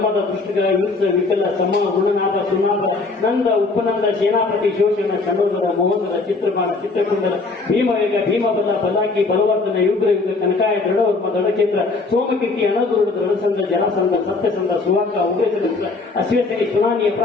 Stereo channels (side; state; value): right; quieter; 3.8 dB